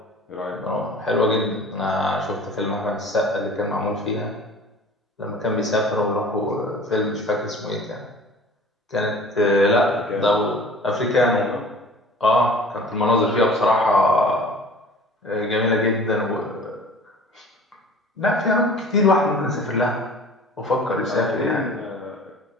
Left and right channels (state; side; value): normal; both; correlation 0.44